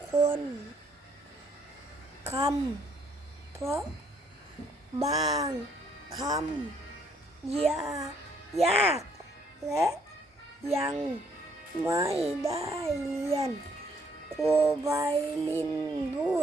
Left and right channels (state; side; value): normal; both; correlation 0.67